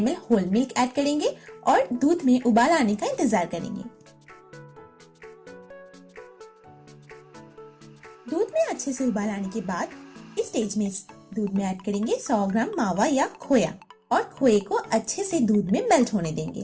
होल मिल्क ऐड करेंगे और दूध में उबाल आने का इंतजार करेंगे। दूध में अच्छे से उबाल आने के बाद इस स्टेज में दूध में ऐड करेंगे 100 ग्राम मावा या खोया और खोए को अच्छे से दूध में मेल्ट होने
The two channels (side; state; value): both; identical; correlation 1.00